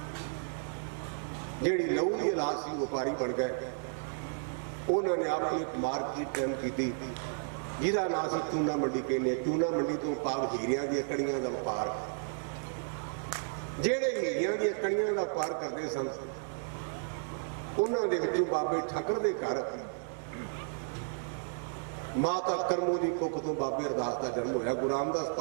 जिहड़ी लहू की औलाद सी, व्यापारी बन गए। उन्होंने अपनी मार्केट टाइम की, जिसका नाम से चूना मंडी कहने। चूना मंडी तो भाव हीरिया दी कड़ियां का व्यापार। जेड़े हीरिया दी कड़ियां का व्यापार करते सन, उन्होंने विचों बाबे ठक्कर दे घर माता करमू की कुख तो बाबे अरदास का जन्म होया। गुरु रामदास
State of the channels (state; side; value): silent; left; digital silence